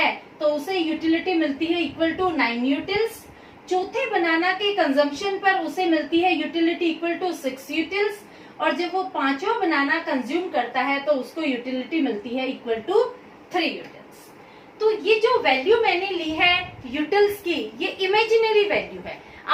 तो उसे यूटिलिटी मिलती है इक्वल टू 9 यूटिल्स। चौथे बनाना के कंजम्पशन पर उसे मिलती है यूटिलिटी इक्वल टू 6 यूटिल्स, और जब वो पांचवा बनाना कंज्यूम करता है तो उसको यूटिलिटी मिलती है इक्वल टू 3 यूटिल्स। तो ये जो वैल्यू मैंने ली है यूटिल्स की, ये इमेजिनरी वैल्यू है।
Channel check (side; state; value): both; identical; correlation 1.00